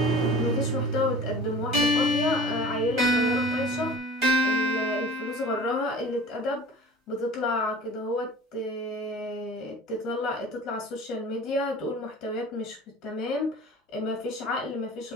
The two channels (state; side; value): normal; both; correlation 0.41